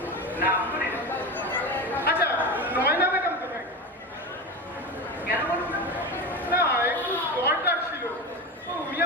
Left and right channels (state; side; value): normal; both; correlation 0.23